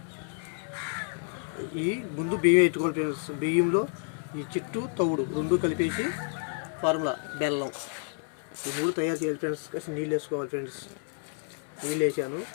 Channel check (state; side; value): silent; right; 57 dB below the other